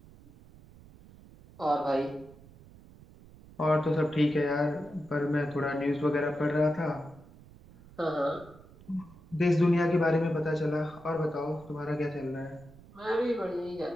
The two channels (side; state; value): right; noise; rumble, 22 dB below the sound